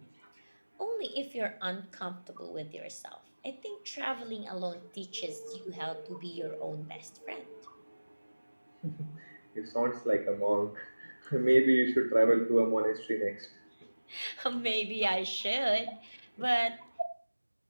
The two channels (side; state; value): both; inverted; correlation -1.00